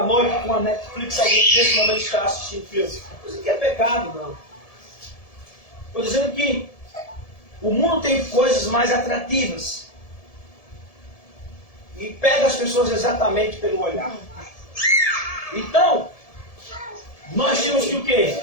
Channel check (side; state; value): right; late; 1.7 ms